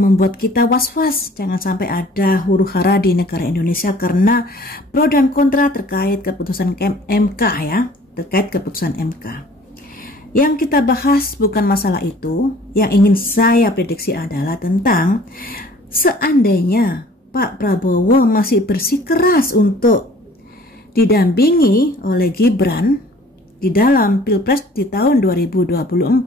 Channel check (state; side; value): normal; both; correlation 0.52